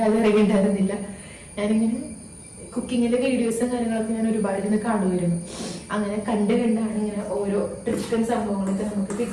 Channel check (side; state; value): both; identical; correlation 1.00